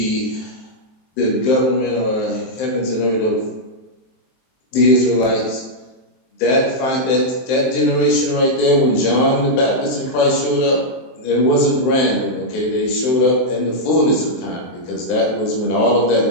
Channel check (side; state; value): right; late; 23 ms